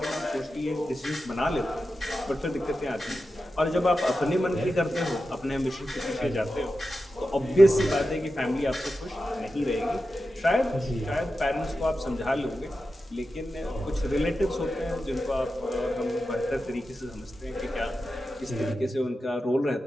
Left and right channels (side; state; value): both; normal; correlation 0.91